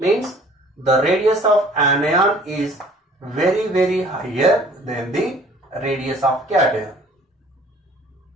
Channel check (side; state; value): both; normal; correlation 0.52